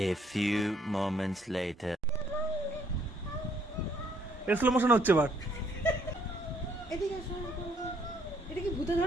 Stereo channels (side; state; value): both; normal; correlation 0.67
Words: A few moments later. Slow motion হচ্ছে এবার। এটা কি ভূতে